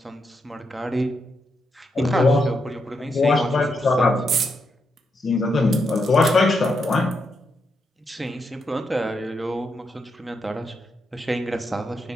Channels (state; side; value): normal; both; correlation 0.82